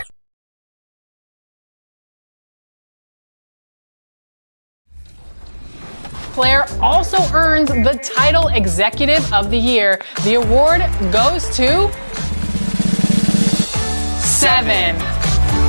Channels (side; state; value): both; inverted; correlation -1.00